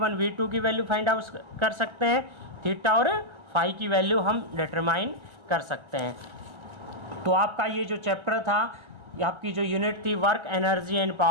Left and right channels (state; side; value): late; left; 1.3 ms